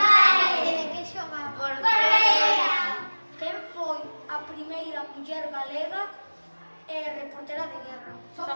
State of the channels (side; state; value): both; inverted; correlation -1.00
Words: De que xogaba? Quen foi a primeira muller galega reportera de guerra?